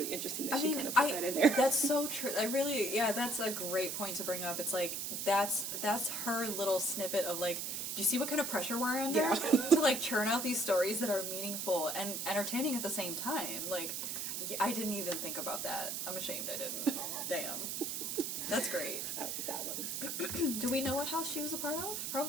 interesting that she kind of put that in there. That's so true. That's a great point to bring up. It's like, that's her little snippet of like, do you see what kind of pressure we're under? Yeah. To like churn out these stories that are meaningful and entertaining at the same time. Like, I didn't even think about that. I'm ashamed I didn't. Damn. That's great. I like that one. Do we know what house she was a part of?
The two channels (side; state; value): right; noise; hiss, 3 dB below the sound